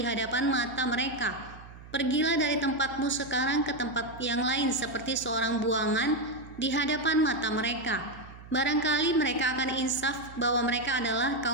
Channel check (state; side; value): noise; right; hum, 17 dB below the sound